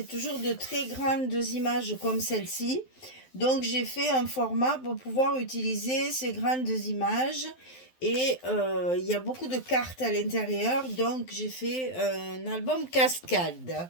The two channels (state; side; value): late; right; 12 ms